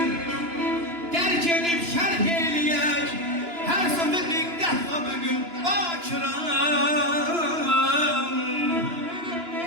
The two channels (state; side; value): late; left; 2.9 ms